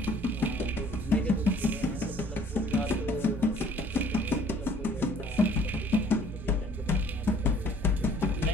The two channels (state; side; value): normal; both; correlation 0.57